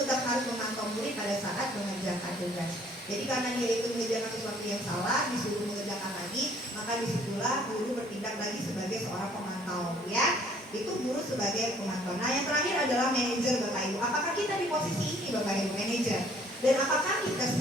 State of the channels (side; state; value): both; normal; correlation 0.59